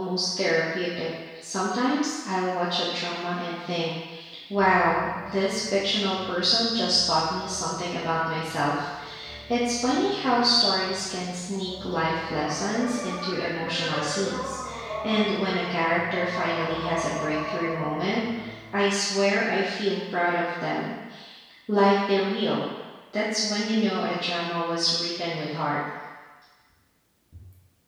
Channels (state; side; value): identical; both; correlation 1.00